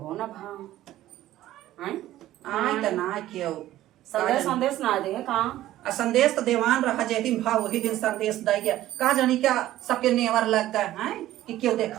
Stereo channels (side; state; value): left; quieter; 14.3 dB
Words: हो ना भा हैं आय त ना क्यों संदेश संदेश ना दे कहाँ संदेश तो देवान रहा जे दिन भाव वही दिन संदेश दे गया का जानी क्या सबके नेवर लगता है कि क्यों